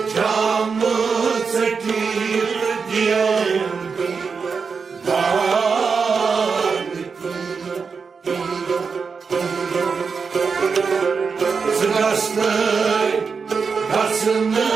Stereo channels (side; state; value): left; quieter; 5.3 dB